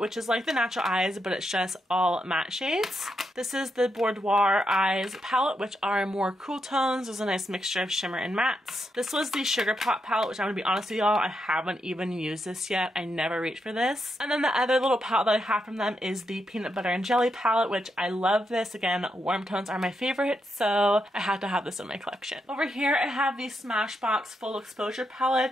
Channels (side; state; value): both; normal; correlation 0.82